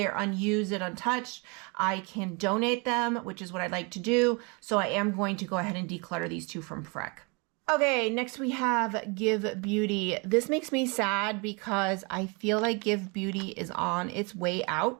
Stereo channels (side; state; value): left; quieter; 31.1 dB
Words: unused and untouched, I can donate them, which is what I'd like to do. So I am going to go ahead and declutter these two from Freck. Okay, next we have Give Beauty. This makes me sad because I feel like Give Beauty is on its way